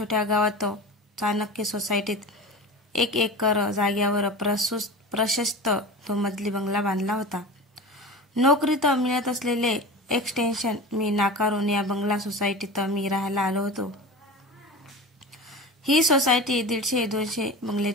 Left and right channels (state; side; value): normal; both; correlation 0.31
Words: गावात चाणक्य सोसायटीत 1 एकर जागेवर प्रशस्त तो मजली बंगला बांधला होता. नोकरीत मिळत असलेले एक्सटेन्शन मी नाकारून या बंगला सोसायटीत मी राहायला आलो होतो. ही सोसायटी 150-200